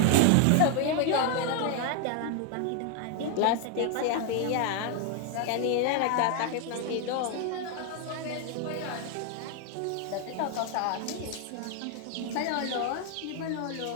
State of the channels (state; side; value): different; both; correlation 0.01